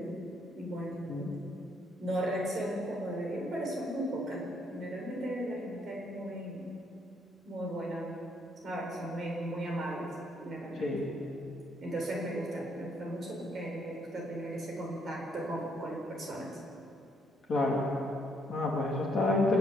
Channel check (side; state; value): both; normal; correlation 0.71